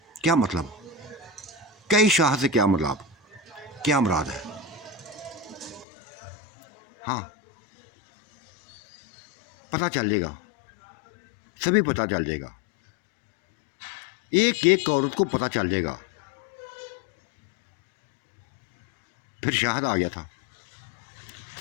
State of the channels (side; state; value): right; drops out; at 5.9 s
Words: क्या मतलब, कई शाह से क्या मतलब, क्या मुराद है। हाँ, पता चल जाएगा, सभी पता चल जाएगा, एक एक औरत को पता चल जाएगा। फिर शाहद आ गया था,